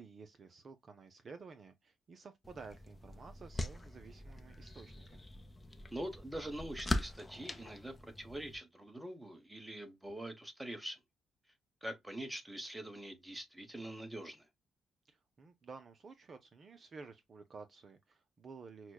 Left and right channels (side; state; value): both; normal; correlation 0.92